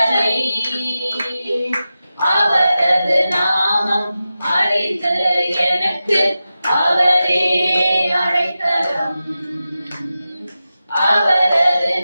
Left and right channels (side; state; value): both; inverted; correlation -0.93